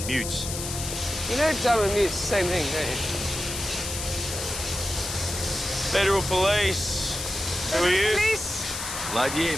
mutes. You know dumb and mute's the same thing, don't you? Federal Police. Who are you? Police?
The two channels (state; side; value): noise; left; hiss, 6 dB below the sound